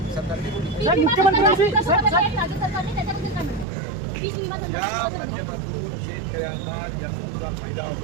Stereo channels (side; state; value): left; drops out; at 3.7 s